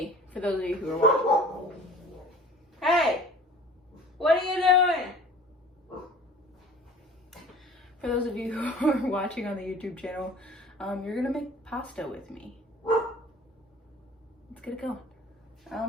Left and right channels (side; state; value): both; normal; correlation 0.46